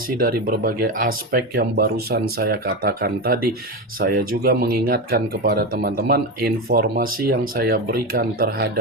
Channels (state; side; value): normal; both; correlation 0.17